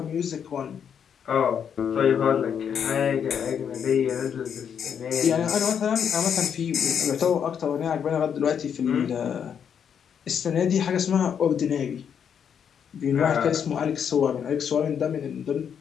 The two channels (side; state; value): right; quieter; 7.9 dB